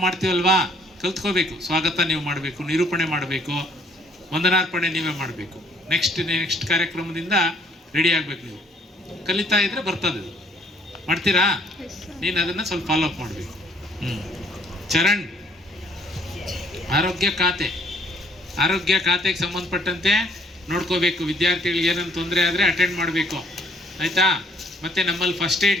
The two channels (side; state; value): both; normal; correlation 0.62